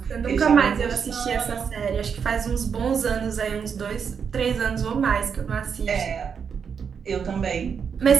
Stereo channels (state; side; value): quieter; left; 6.7 dB